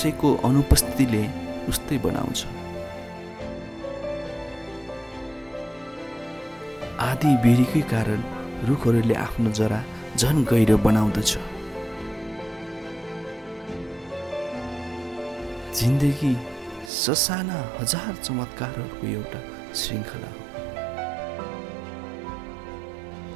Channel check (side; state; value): left; drops out; at 16.9 s